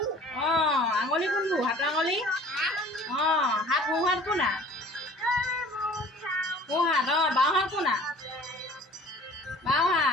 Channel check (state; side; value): normal; both; correlation 0.48